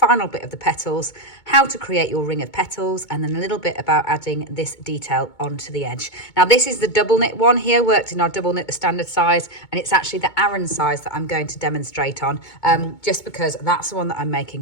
bit of the petals, how to create your ring of petals, and then a little bit about adding this detail onto the edge. Now this is the double knit one here, worked in our double knit, the standard size, and it's actually the Aran size that I'm going to demonstrate on, just because that's the one that I'm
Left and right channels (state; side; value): late; right; 2.2 ms